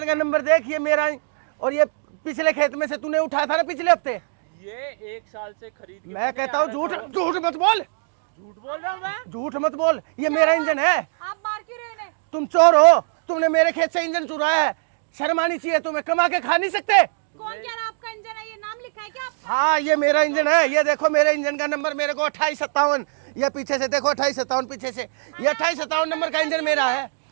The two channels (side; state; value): left; silent; digital silence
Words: का नंबर देख, ये मेरा और ये पिछले खेत में से तूने उठाया था ना पिछले हफ्ते। ये 1 साल से खरीद के मैं कहता हूँ झूठ मत बोल। झूठ बोल रहा हूँ मैं? झूठ मत बोल, ये मेरा इंजन है। आप मार क्यों रहे? तुम चोर हो, तुमने मेरे खेत से इंजन चुराया है। शर्म आनी चाहिए तुम्हें, कमा के खा नहीं सकते। कौन कह रहा आपका इंजन है? ये नाम लिखा है क्या आपका? हाँ ये मेरा इंजन है। ये देखो मेरे इंजन का नंबर मेरे को 2857। ये पीछे से देखो 2857 पीछे से, ये 2857 नंबर का इंजन मेरा है।